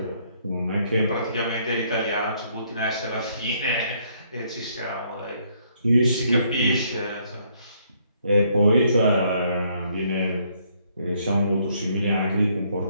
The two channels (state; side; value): inverted; both; correlation -0.69